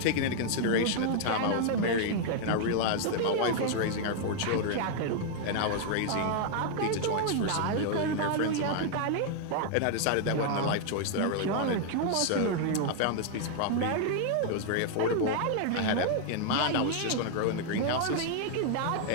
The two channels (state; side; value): different; both; correlation 0.00